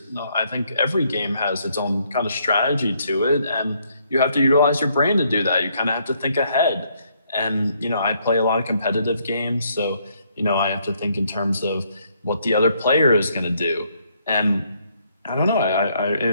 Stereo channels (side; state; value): both; inverted; correlation -0.71